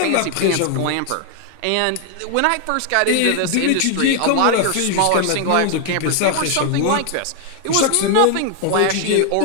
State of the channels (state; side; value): different; both; correlation 0.00